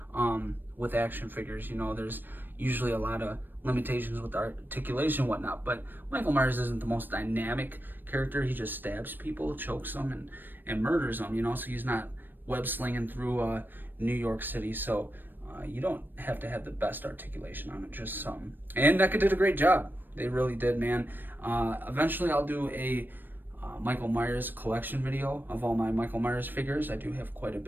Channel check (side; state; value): left; late; 0.093 ms